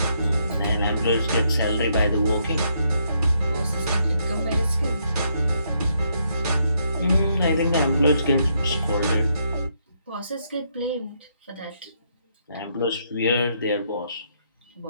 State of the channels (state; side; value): inverted; both; correlation -0.75